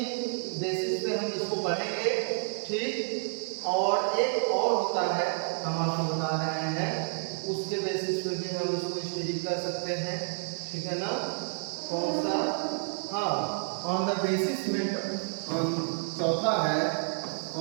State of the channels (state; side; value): silent; left; 58 dB below the other